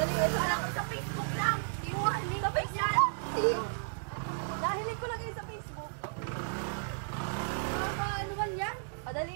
Ito Alam lang. ko sa Facebook lang. Iwanin ko yan. Nahilig ko lang yun sa Facebook. Ano man yan? O, dali.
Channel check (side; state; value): left; silent; digital silence